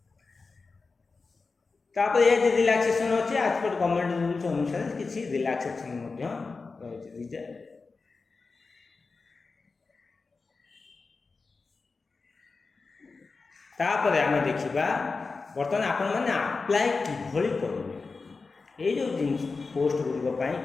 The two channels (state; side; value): quieter; right; 4.2 dB